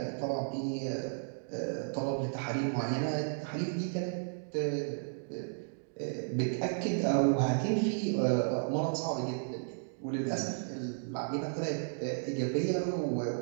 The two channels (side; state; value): left; silent; digital silence